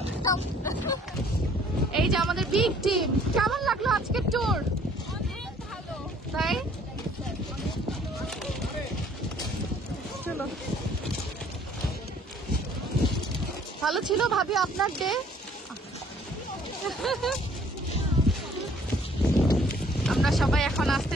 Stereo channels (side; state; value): both; normal; correlation 0.58